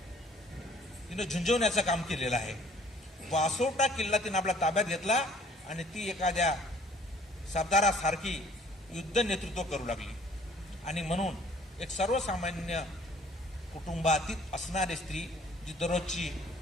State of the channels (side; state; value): both; normal; correlation 0.56